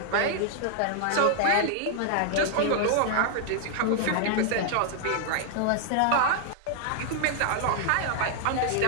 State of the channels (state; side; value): different; both; correlation 0.00